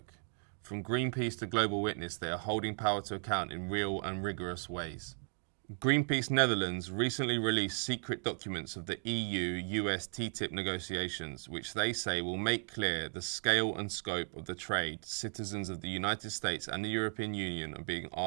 From Greenpeace to Global Witness, they are holding power to account in real and rigorous ways. Greenpeace Netherlands recently released secret documents of the EU-US TTIP negotiations, which they say will make clear the scale and scope of the trade citizens of the United States and the European Union are being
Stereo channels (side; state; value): left; silent; digital silence